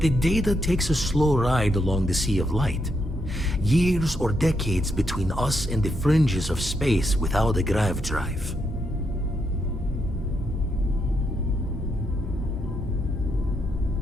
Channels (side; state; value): both; normal; correlation 0.79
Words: data takes a slow ride along the Sea of Light. Years or decades between us and the fringes of space without a grav drive.